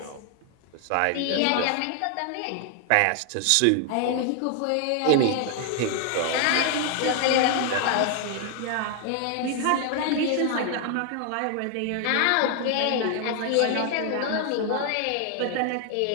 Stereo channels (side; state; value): both; different; correlation 0.00